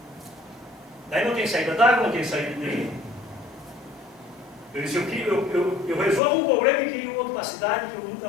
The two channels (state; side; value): drops out; right; at 6.2 s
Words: Daí não tem saída d'água, não tem saída de nenhum. Eu disse, eu resolvo um problema e crio outro para a cidade que eu nunca